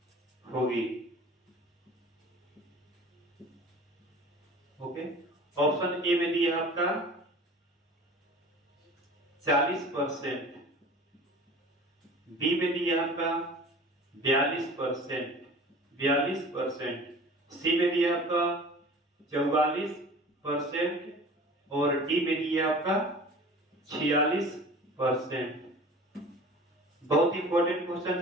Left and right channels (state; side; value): normal; both; correlation 0.42